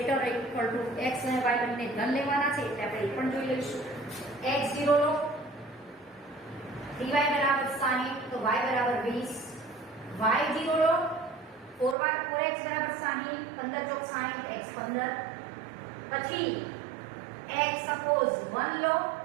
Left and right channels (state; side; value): drops out; left; at 12.0 s